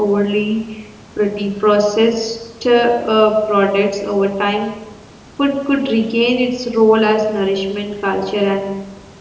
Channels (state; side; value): identical; both; correlation 1.00